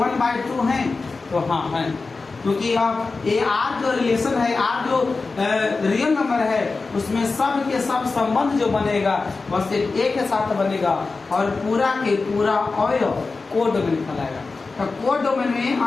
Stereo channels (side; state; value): right; quieter; 4.0 dB